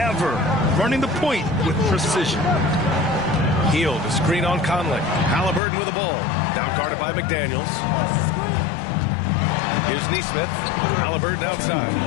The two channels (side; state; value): right; drops out; at 5.6 s